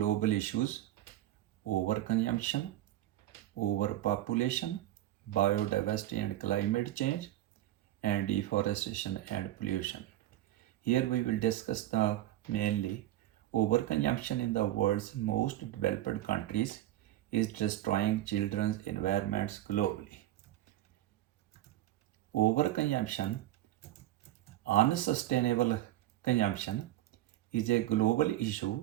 issues: overconsumption, overpopulation, biodiversity and climate change, and deforestation and pollution. Here we will discuss the mainly overconsumption in the world's most developed countries is destroying children's environments globally. Overconsumption, unsustainable consumption, is a global issue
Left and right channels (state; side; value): quieter; left; 14.0 dB